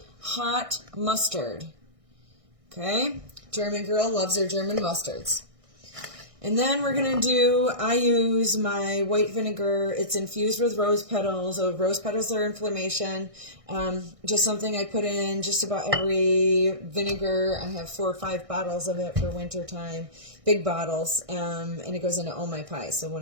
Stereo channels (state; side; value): late; left; 1.6 ms